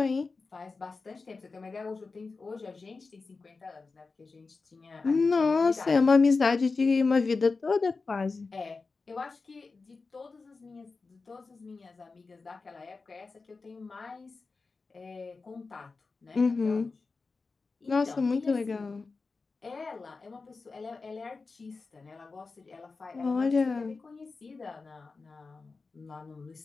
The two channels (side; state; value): right; quieter; 4.2 dB